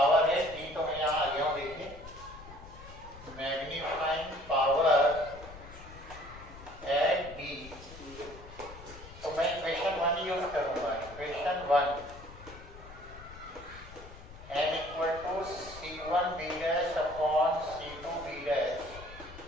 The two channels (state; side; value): noise; left; rumble, 16 dB below the sound